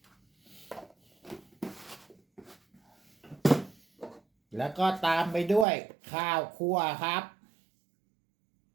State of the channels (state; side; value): drops out; left; at 5.7 s